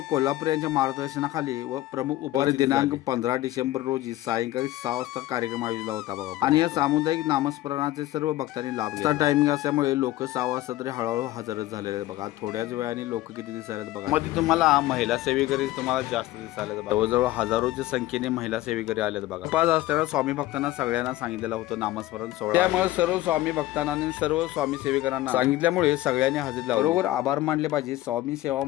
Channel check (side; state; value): right; quieter; 16.1 dB